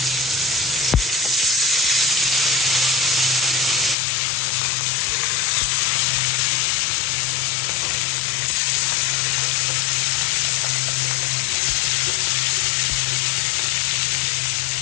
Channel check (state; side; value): drops out; right; at 4.0 s